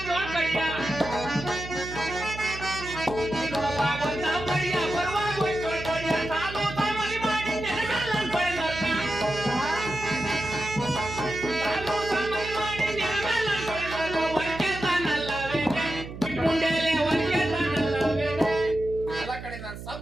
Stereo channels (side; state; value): right; noise; hum, 11 dB below the sound